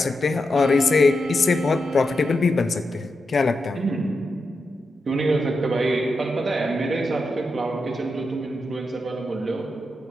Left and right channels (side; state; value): both; normal; correlation 0.87